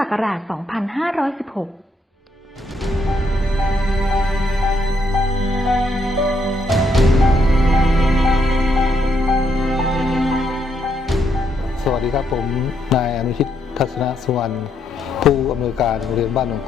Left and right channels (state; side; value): normal; both; correlation 0.75